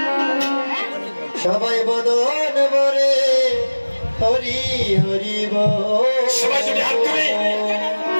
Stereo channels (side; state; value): both; inverted; correlation -1.00